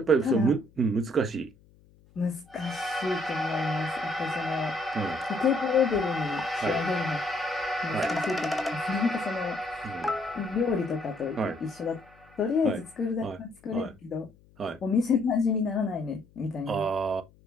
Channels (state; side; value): noise; left; hum, 28 dB below the sound